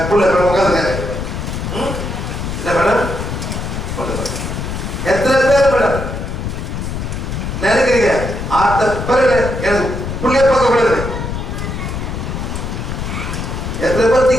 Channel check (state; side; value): noise; left; rumble, 5 dB below the sound